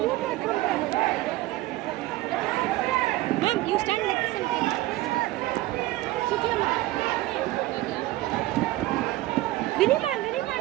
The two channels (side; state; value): left; quieter; 17.4 dB